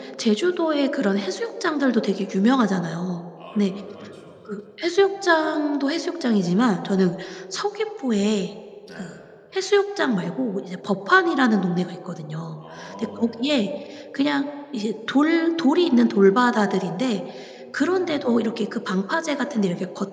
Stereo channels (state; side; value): identical; both; correlation 1.00